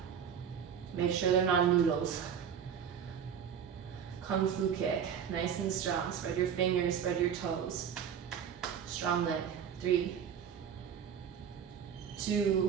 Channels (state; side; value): quieter; left; 8.0 dB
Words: Make sure they're not noodles. Kung Fu kick, nice and strong. Spread your fingers, spread your toes. Strong leg. 3,